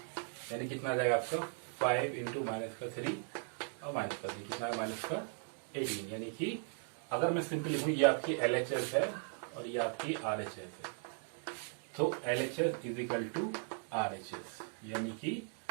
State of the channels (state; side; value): silent; left; 53 dB below the other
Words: यानी कितना आ जाएगा आपका 5 इंटू -3 और -3 कितना है -18। यानी कि अगर मैं सिंपल लिखूँ, ये आपकी LHS है और ये आपकी RHS है। तो LHS is equal to RHS यानी कि